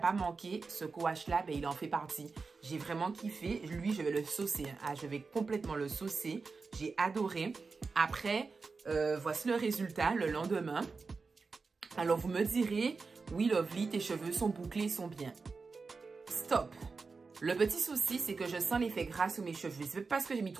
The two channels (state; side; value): quieter; left; 4.4 dB